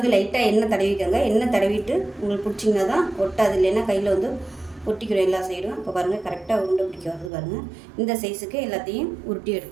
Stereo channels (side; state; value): left; drops out; at 7.3 s